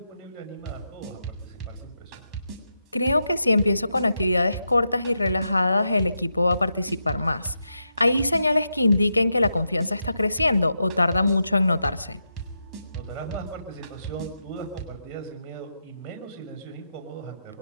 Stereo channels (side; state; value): both; inverted; correlation -0.86